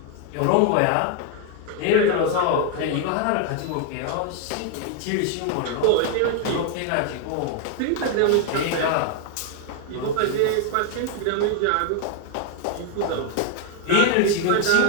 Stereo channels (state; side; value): different; both; correlation 0.00